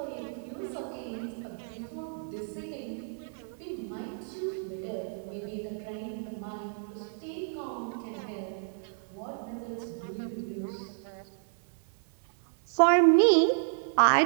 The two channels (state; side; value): silent; left; 57 dB below the other